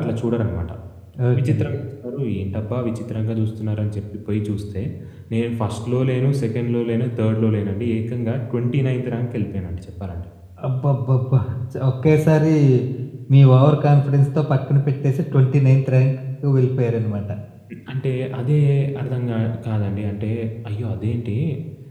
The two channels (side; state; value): both; identical; correlation 1.00